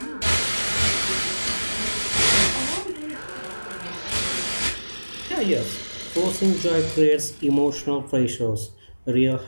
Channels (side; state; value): both; inverted; correlation -1.00